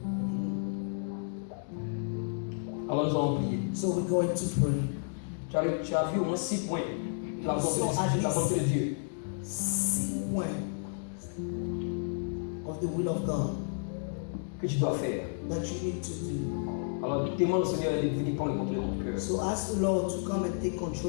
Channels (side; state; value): right; silent; digital silence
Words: Alors nous allons prier. So we're going to pray. Tu as vu au moins 6 points de la volonté de, la volonté de Dieu. 6 points of the will of God Que tu dois faire. that you need to do. Alors demande au Seigneur de venir prendre le contrôle de ton cœur So ask the Lord to come and take